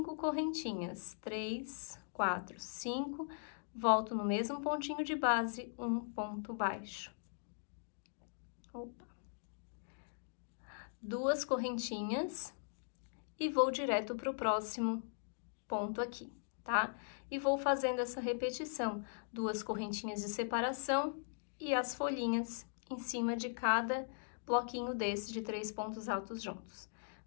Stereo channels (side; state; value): right; silent; digital silence